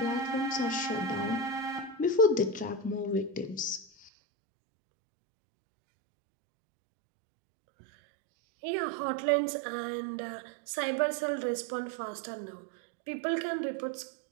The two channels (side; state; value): left; drops out; at 4.1 s